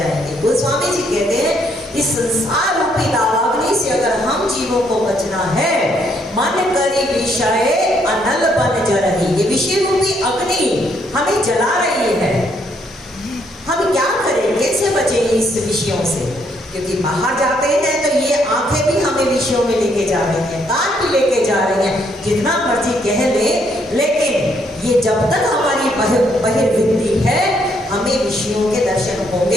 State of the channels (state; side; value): normal; both; correlation 0.71